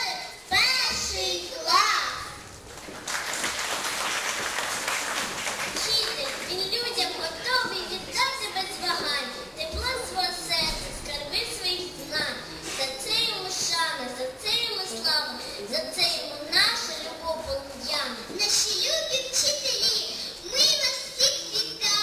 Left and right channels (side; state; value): both; identical; correlation 1.00